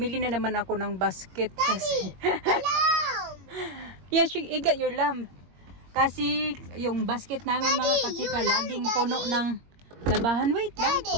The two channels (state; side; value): late; left; 21 ms